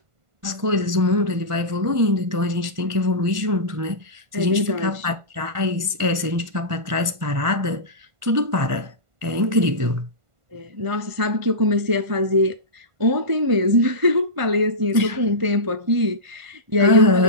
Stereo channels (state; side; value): late; left; 1.5 ms